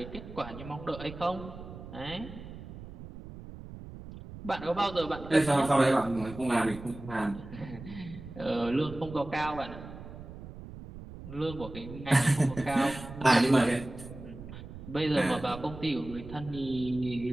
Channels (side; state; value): right; noise; rumble, 13 dB below the sound